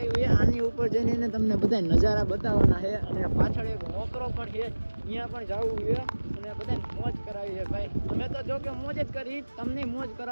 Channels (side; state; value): both; inverted; correlation -1.00